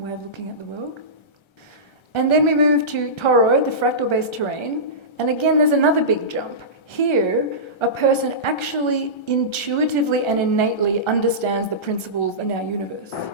of looking at the world. And then we move to Toroid, the fractal-based terrain. And again, there's another big jump. Here, a person actually intuitively and innately understands the principles in our universe.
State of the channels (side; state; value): right; late; 1.3 ms